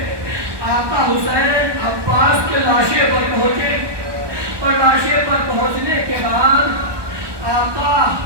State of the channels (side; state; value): left; late; 1.2 ms